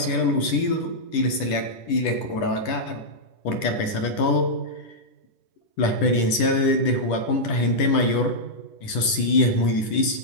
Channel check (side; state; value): right; late; 10 ms